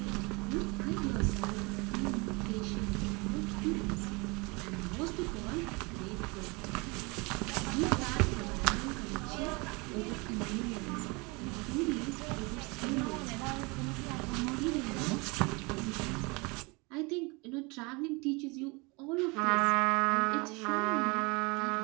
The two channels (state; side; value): quieter; left; 27.7 dB